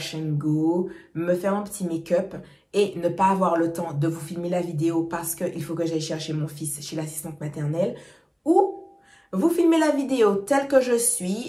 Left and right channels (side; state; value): both; identical; correlation 1.00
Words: and go, me faire mon petit make-up et ne pas avoir le temps de vous filmer la vidéo parce qu'il faut que j'aille chercher mon fils chez l'assistante maternelle, ou vous filmer la vidéo telle que je